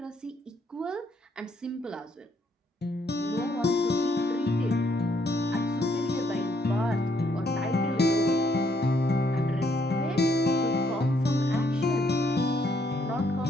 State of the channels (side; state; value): both; normal; correlation 0.71